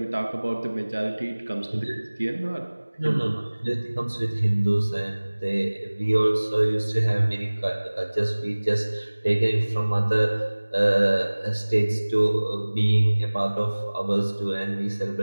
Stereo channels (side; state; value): both; inverted; correlation -1.00